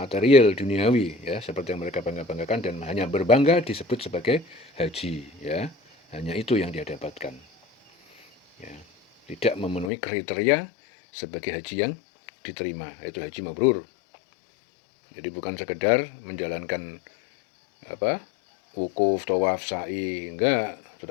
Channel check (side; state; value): right; drops out; at 9.9 s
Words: duniawi, ya, seperti yang mereka bangga-banggakan, dan hanya berbangga disebut sebagai haji, ya. Hanya itu yang dia dapatkan. Ya, tidak memenuhi kriteria sebagai haji yang diterima, yaitu haji mabrur. Jadi bukan sekedar menjalankan wukuf, tawaf, sa'i, enggak,